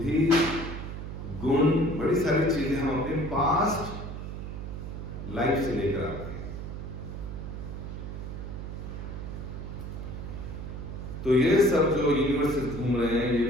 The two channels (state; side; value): noise; right; hum, 7 dB below the sound